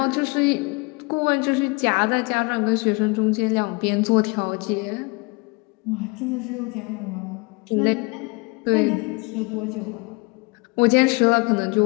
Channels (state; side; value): quieter; right; 28.3 dB